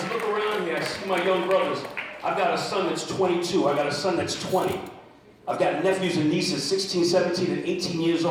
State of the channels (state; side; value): identical; both; correlation 1.00